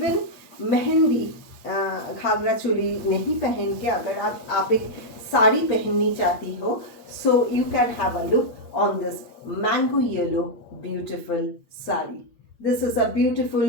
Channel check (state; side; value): late; right; 8.6 ms